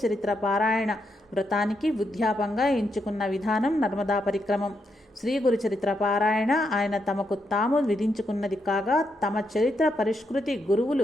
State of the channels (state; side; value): normal; both; correlation 0.81